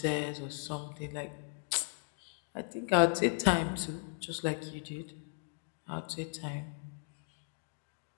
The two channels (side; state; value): right; silent; 53 dB below the other